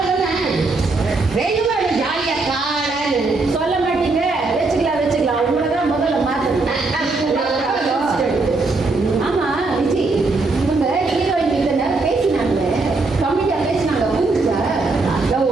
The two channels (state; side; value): quieter; left; 3.6 dB